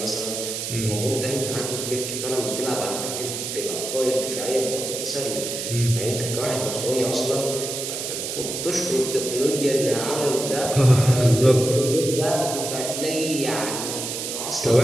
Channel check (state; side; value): noise; right; hiss, 5 dB below the sound